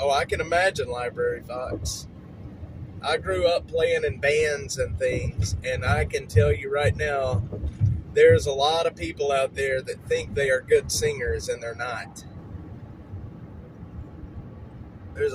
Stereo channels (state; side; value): identical; both; correlation 1.00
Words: Oh, I can imagine, Library Fox. I grew up playing in bands and things, and I can tell you right now, there's a lot of people out there that think they are good singers, and they're not. There's